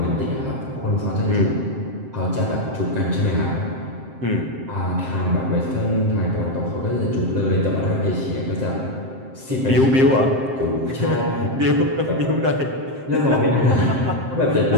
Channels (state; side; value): late; left; 7.6 ms